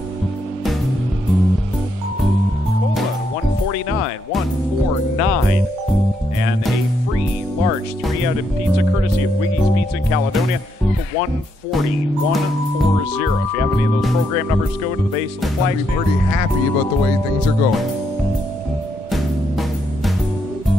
149, and a free large 3-outed pizza courtesy of Wiggy's Pizza in Caledonia for 140. If you have any of those program numbers, go to the base of the flag stand. Pretty happy about the way things are going.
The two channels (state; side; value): normal; both; correlation 0.77